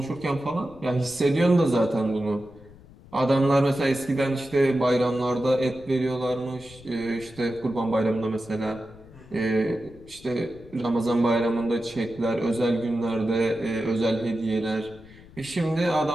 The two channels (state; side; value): noise; left; rumble, 22 dB below the sound